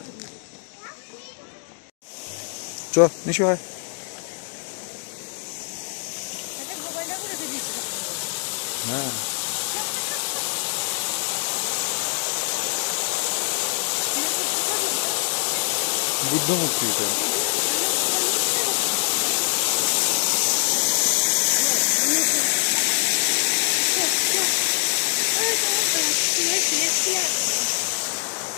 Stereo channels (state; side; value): silent; right; digital silence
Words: চ নিশু হয়। হ্যাঁ, বুদ্ধ মূর্তি এটা।